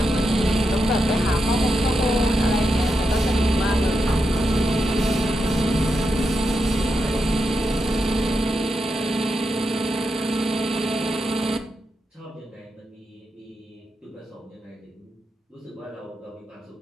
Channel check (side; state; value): both; normal; correlation 0.86